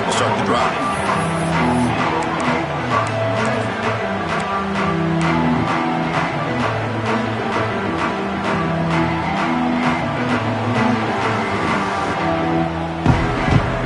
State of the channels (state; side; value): identical; both; correlation 1.00